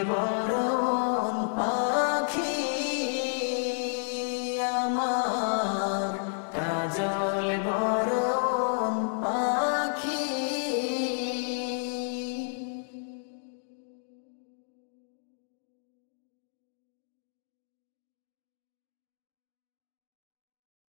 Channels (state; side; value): silent; right; digital silence